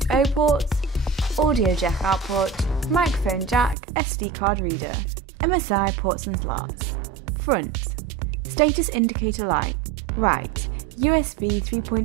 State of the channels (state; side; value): drops out; left; at 3.8 s